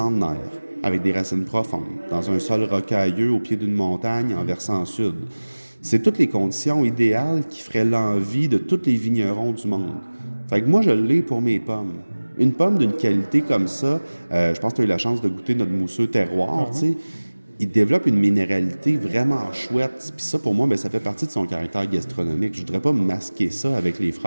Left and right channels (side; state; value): both; inverted; correlation -1.00